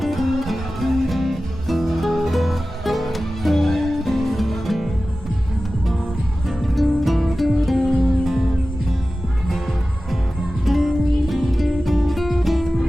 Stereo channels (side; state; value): both; normal; correlation 0.95